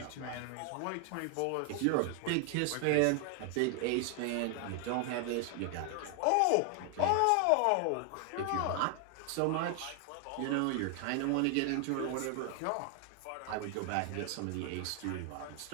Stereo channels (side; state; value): both; different; correlation 0.00